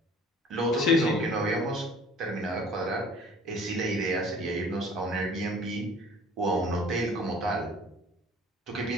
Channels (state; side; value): normal; both; correlation 0.50